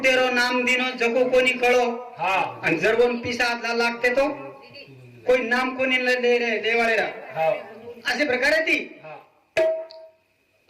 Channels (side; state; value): both; identical; correlation 1.00